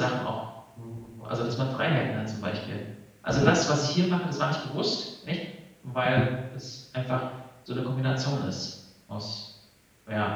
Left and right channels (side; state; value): both; identical; correlation 1.00